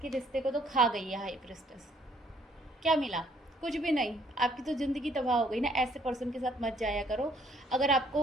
कि रिश्ते को तो खा गई है हाई प्रिस्टेस। क्या मिला? कुछ भी नहीं। आपकी तो ज़िंदगी तबाह हो गई ना। ऐसे पर्सन के साथ मत जाया करो। अगर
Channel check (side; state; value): both; normal; correlation 0.64